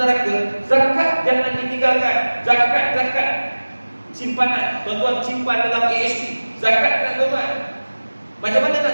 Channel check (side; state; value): both; inverted; correlation -1.00